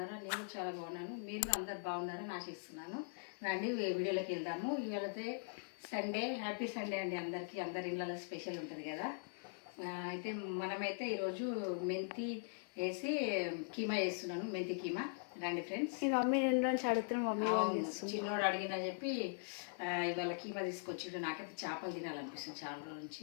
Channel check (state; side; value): silent; right; digital silence